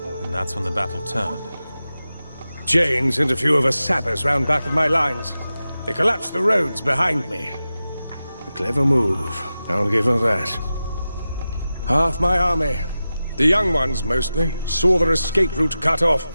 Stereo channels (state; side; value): inverted; both; correlation -0.93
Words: and that's when the battle turned. Jane sent a few of her sappers round back of my lines. They collapsed the roads behind me. A clever move, I'll give her that. Half my army, the young ones mostly, saw their escape route cut off.